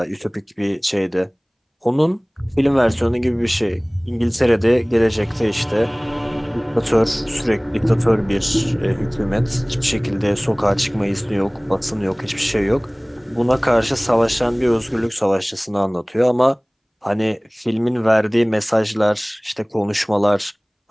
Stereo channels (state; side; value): identical; both; correlation 1.00